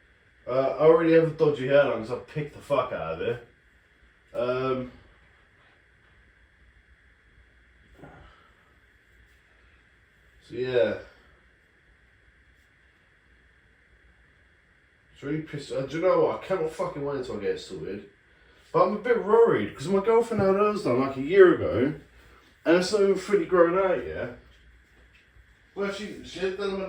I already have a dodgy hairline because I picked the fuck out of it. So yeah. It's really pissed. Do you know what? I cannot fucking wait until I get it sorted. But I'm a bit worried because my girlfriend had hers done like a year ago, and it's not even fully grown out yet. Well, she had done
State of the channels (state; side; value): identical; both; correlation 1.00